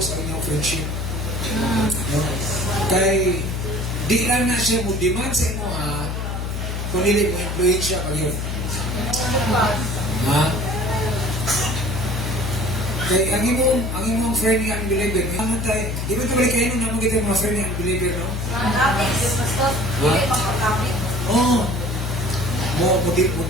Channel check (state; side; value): noise; left; hum, 3 dB below the sound